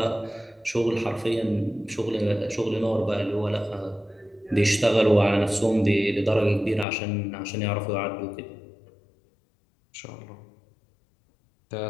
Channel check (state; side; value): drops out; right; at 6.9 s